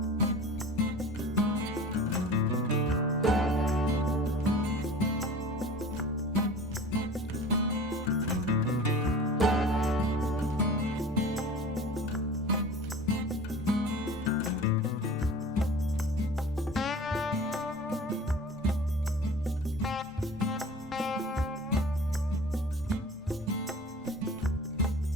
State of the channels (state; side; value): normal; both; correlation 0.40